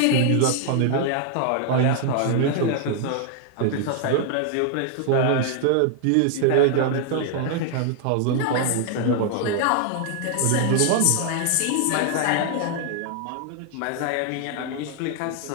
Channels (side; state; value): both; different; correlation 0.00